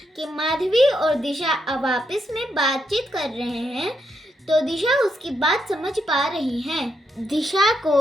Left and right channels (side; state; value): both; normal; correlation 0.80